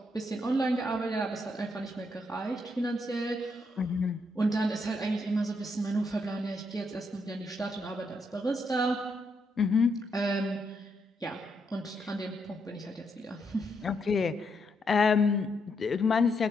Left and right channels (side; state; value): both; normal; correlation 0.78